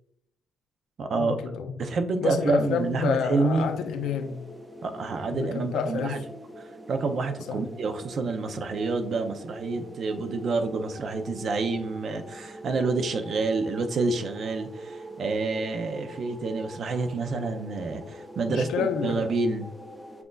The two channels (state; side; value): normal; both; correlation 0.75